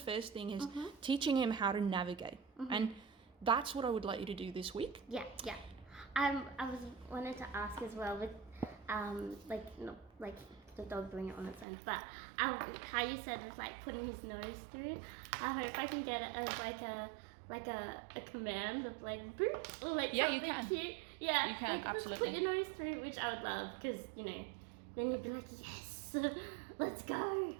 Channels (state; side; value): drops out; left; at 11.7 s